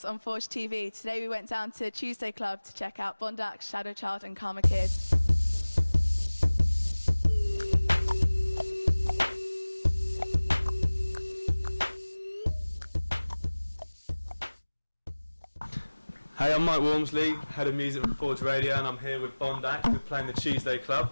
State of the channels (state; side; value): inverted; both; correlation -1.00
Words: on Forge TV. Today we went down to Tuesday Club to check out Bondax, Shadow Child and Karma Kid. Hey, I'm Mike Walmsley, head of music for Forge Radio, and I'm here with Bondax. We're playing the Tuesday